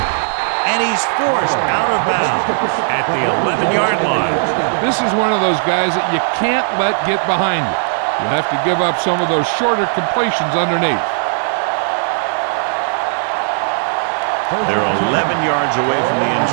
And he's forced out of bounds at the 11-yard line. This is one of those guys that you can't let get behind you. You have to give up some of those shorter completions underneath. They're 11 yards away from the end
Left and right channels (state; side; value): silent; left; digital silence